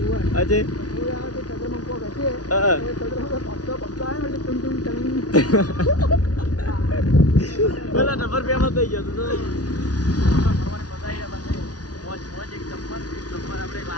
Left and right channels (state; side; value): late; right; 0.68 ms